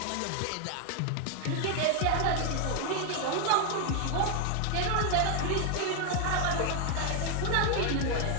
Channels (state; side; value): different; both; correlation 0.00